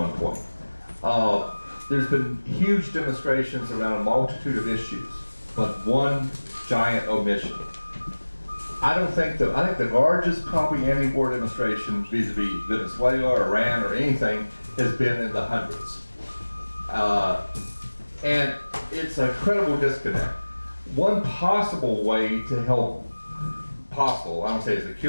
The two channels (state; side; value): inverted; both; correlation -1.00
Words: point. There's been huge demonstrations around a multitude of issues, but one giant omission. I think the largest probably anti-war demonstration vis-a-vis Venezuela or Iran or anything has been in the hundreds. And it's a credible disconnect. One possible way to help, I don't say it's a